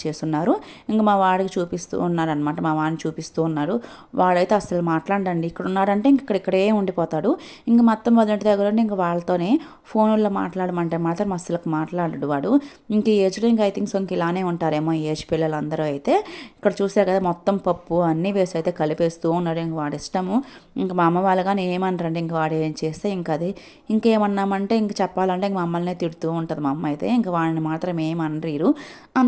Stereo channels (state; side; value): identical; both; correlation 1.00